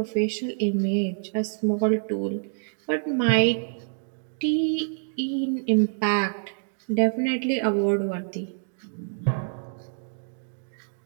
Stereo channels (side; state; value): left; silent; digital silence